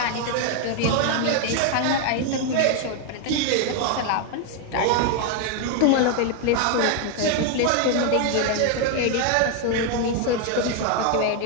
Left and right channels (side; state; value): both; different; correlation 0.01